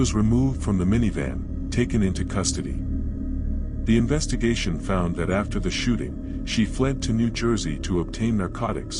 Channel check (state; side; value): identical; both; correlation 1.00